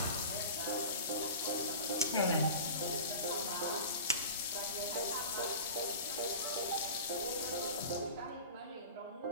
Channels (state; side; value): inverted; both; correlation -0.35